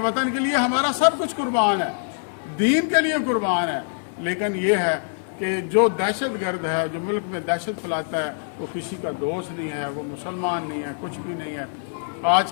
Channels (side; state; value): right; silent; 62 dB below the other